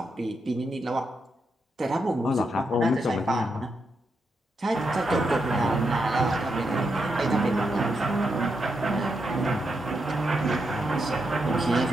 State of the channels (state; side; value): normal; both; correlation 0.83